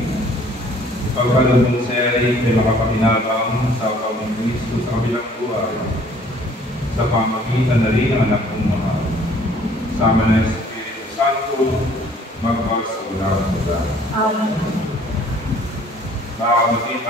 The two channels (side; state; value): both; normal; correlation 0.57